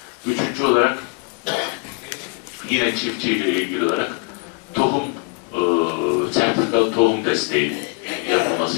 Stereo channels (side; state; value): right; quieter; 33.6 dB